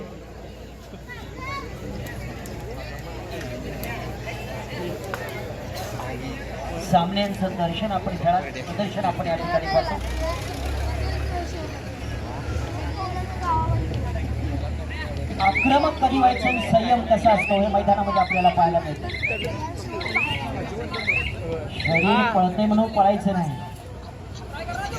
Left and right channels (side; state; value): both; identical; correlation 1.00